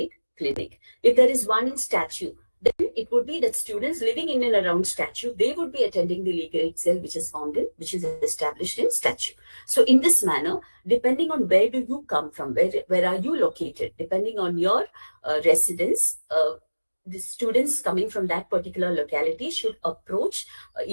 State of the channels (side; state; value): both; inverted; correlation -1.00